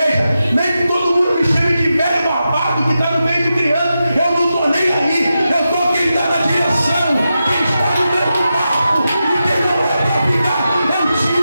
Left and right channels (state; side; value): inverted; both; correlation -0.90